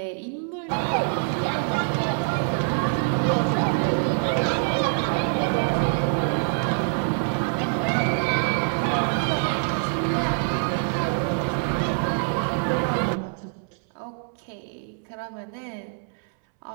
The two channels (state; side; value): silent; left; 62 dB below the other